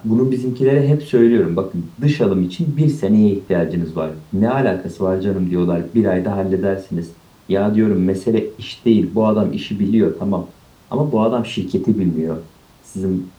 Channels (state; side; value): identical; both; correlation 1.00